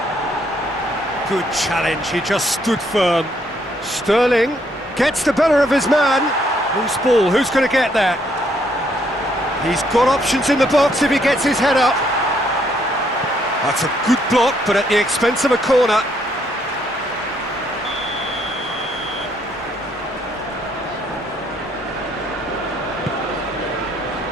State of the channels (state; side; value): normal; both; correlation 0.70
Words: Good challenge, he just stood firm. Sterling gets the better of his man. Loose ball, who's going to get that? He's got options in the box if he gets his head up. That's a good block, but at the expense of a corner.